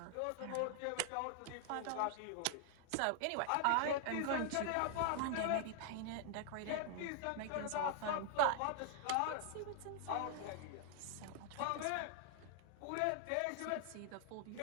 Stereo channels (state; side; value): different; both; correlation 0.00